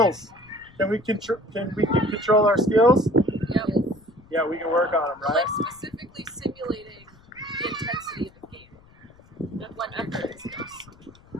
Can we control our skills? Yep. Yeah, we can work on them, right? Like specifically simulating the intensity of the game. And when effort is skills.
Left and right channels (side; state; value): left; noise; rumble, 26 dB below the sound